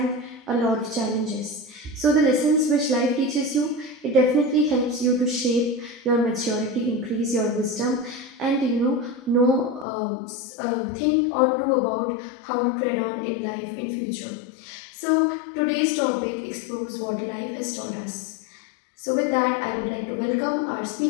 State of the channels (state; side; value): drops out; right; at 9.9 s